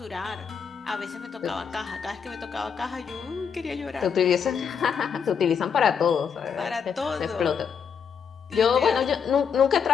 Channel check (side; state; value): right; quieter; 6.8 dB